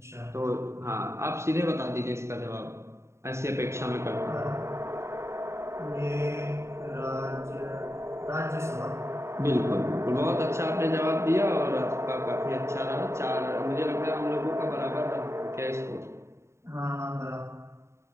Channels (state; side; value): late; left; 0.13 ms